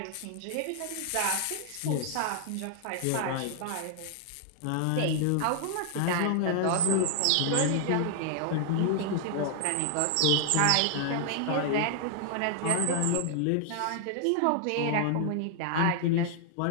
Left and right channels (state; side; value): different; both; correlation 0.00